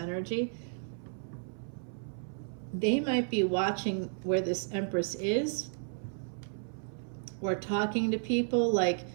They might be watching where this Empress is, or talking to people. Like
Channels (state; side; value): silent; left; 56 dB below the other